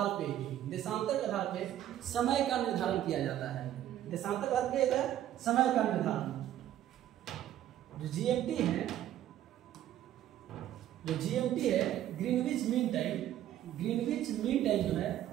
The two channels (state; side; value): quieter; left; 12.1 dB